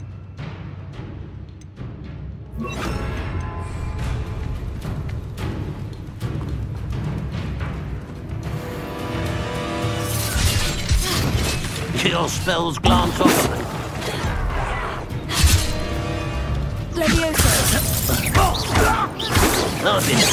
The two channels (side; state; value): both; identical; correlation 1.00